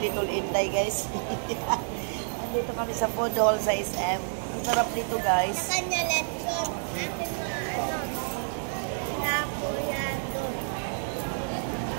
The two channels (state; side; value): silent; left; 59 dB below the other